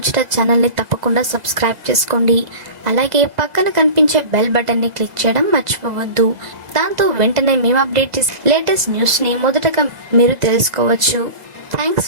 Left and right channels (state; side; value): late; left; 2.0 ms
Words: ఛానల్ని తప్పకుండా సబ్స్క్రైబ్ చేసుకోండి. అలాగే పక్కన కనిపించే బెల్ బటన్ని క్లిక్ చేయడం మర్చిపోవద్దు. దాంతో వెంటనే మేము అప్డేట్ చేసే లేటెస్ట్ న్యూస్ని మొదటగా మీరు తెలుసుకోవచ్చు.